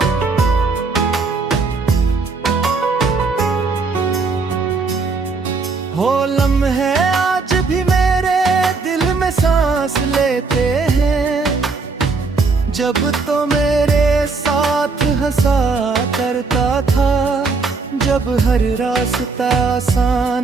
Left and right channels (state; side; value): quieter; left; 4.3 dB